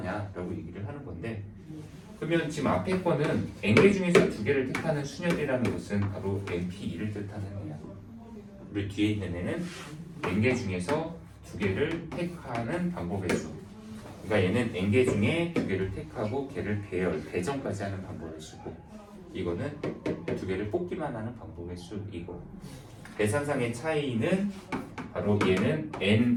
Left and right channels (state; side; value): identical; both; correlation 1.00